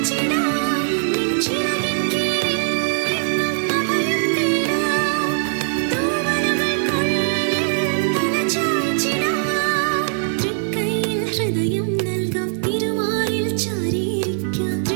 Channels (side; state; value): left; silent; digital silence